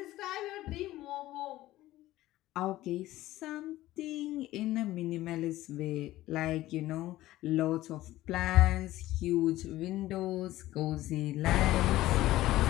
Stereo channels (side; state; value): right; quieter; 16.0 dB